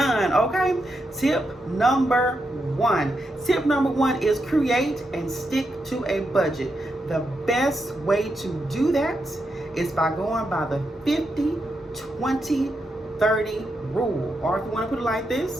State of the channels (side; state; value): both; normal; correlation 0.84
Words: Okay, tip number 1 is create and stick to a budget. The best way to do that is by going by the 50-20-30 rule, or if you want to put it like